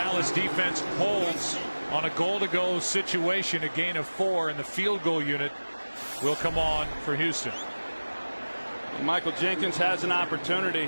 defense holds on a goal-to-go situation. A gain of 4, and the field goal unit will come on for Houston. Michael Jenkins has an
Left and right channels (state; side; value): inverted; both; correlation -1.00